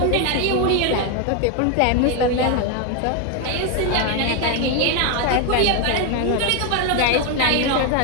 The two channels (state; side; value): different; both; correlation 0.01